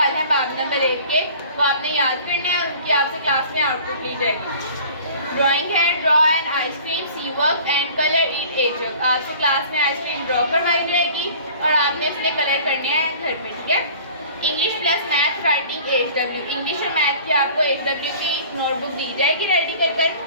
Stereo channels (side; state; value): both; inverted; correlation -0.45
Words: हैं बाब नंबर 1 के, वो आपने याद करने हैं और उनकी आपसे क्लास में आउटपुट ली जाएगी। ड्राइंग है, draw an ice cream, see work and colour it a jug. आपसे क्लास में आइसक्रीम ड्रॉ करवाई जाएगी और आपने उसमें कलर करने हैं घर में, ठीक है। English plus math writing HW। English और मैथ की आपको HW की नोटबुक दी जाएगी रेडी कर।